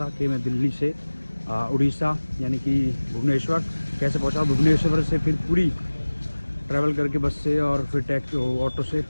कि मैं दिल्ली से उड़ीसा यानी कि भुवनेश्वर कैसे पहुंचा, भुवनेश्वर से फिर पूरी ट्रैवल करके बस से और फिर टैक्सी ऑटो से,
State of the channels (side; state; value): both; inverted; correlation -1.00